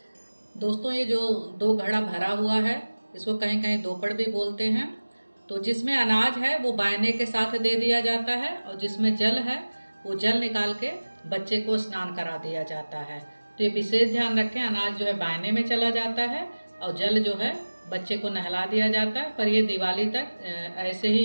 दोस्तों, ये जो 2 घड़ा भरा हुआ है, इसको कहीं कहीं दोपड़ भी बोलते हैं। तो जिसमें अनाज है वो बायने के साथ दे दिया जाता है, और जिसमें जल है वो जल निकाल के बच्चे को स्नान करा दिया जाता है। तो ये विशेष ध्यान रखें, अनाज जो है बायने में चला जाता है और जल जो है बच्चे को नहला दिया जाता है। पर ये दिवाली तक ऐसे ही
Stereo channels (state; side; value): inverted; both; correlation -1.00